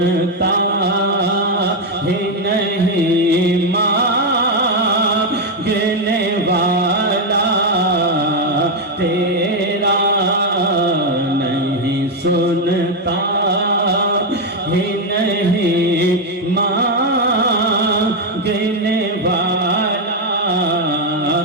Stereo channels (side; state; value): both; normal; correlation 0.04